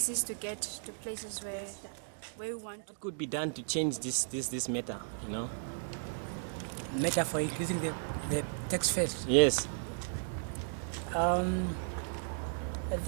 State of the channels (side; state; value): left; silent; digital silence